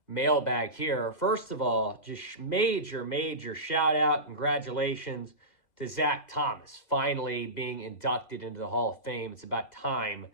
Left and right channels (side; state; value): right; late; 2.0 ms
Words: mailbag here. First of all, just major shout out, congratulations to Zach Thomas finally being inducted into the Hall of Fame. It's about time.